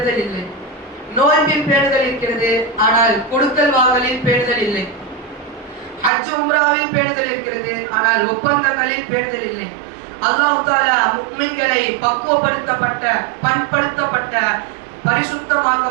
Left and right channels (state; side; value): drops out; left; at 6.1 s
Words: இல்லை. நோன்பில் பேணுதல் இருக்கிறது, ஆனால் கொடுக்கல் வாங்கலில் பேணுதல் இல்லை. ஹஜ் உம்ராவில் பேணுதல் இருக்கிறது, ஆனால் ஒப்பந்தங்களில் பேணுதல் இல்லை. அல்லாஹ் தஆலா முஃமின்களை பக்குவப்படுத்தப்பட்ட, பண்படுத்தப்பட்ட,